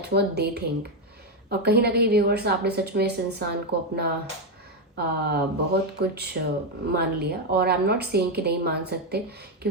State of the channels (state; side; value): normal; both; correlation 0.06